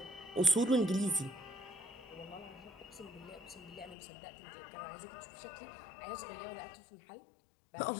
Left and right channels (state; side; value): drops out; right; at 4.0 s